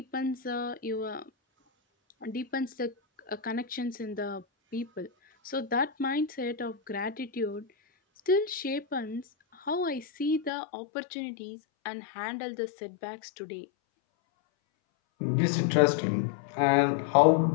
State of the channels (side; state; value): right; drops out; at 10.5 s